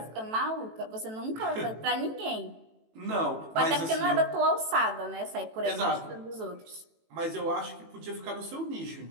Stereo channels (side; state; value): left; late; 18 ms